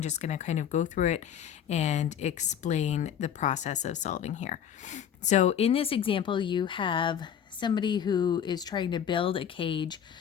just going to kind of go through it and explain the process of solving here. So in this example, you have somebody who is trying to build a cage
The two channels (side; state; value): right; quieter; 8.9 dB